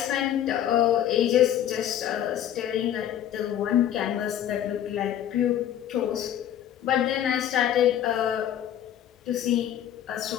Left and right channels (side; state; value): right; quieter; 10.8 dB